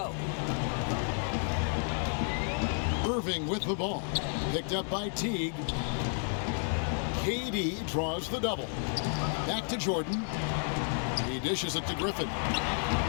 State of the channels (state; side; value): silent; right; 57 dB below the other